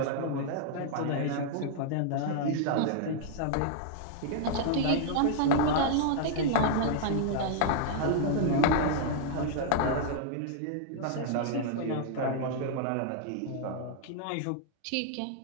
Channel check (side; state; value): both; different; correlation -0.01